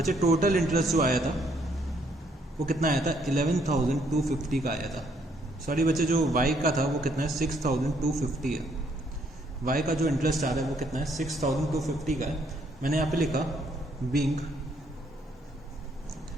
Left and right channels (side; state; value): both; normal; correlation 0.69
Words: टोटल इंटरेस्ट जो आया था वो कितना आया था, 11,250 का आया था। सॉरी बच्चे, जो वाई का था वो कितना है, 6,250 है। वाई का जो इंटरेस्ट आ रहा है वो कितना है, 6,250 का है। मैंने यहाँ पे लिखा being